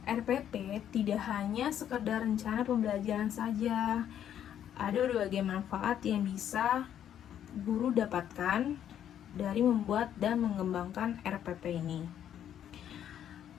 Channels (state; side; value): quieter; right; 10.0 dB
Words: RPP tidak hanya sekedar rencana pembelajaran saja. Ada berbagai manfaat yang bisa guru dapatkan dari membuat dan mengembangkan RPP ini.